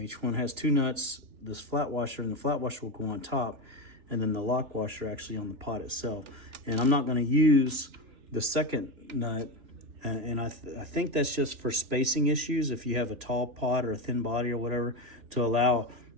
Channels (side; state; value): left; late; 3.4 ms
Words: each one has 2 nuts. This flat washer, and the flat washer will go on top, and then the lock washer actually on the pot itself. And I'm not going to use the second nut, and I think that's just for spacing issues. If you have a tall pot or a thin body or whatever, to allow